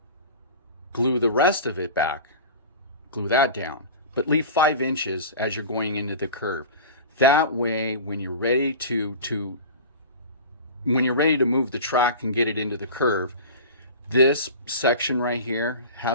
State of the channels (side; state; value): both; inverted; correlation -0.34